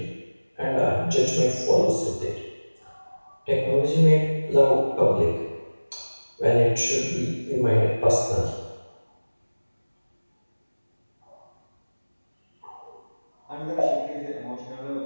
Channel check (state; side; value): inverted; both; correlation -1.00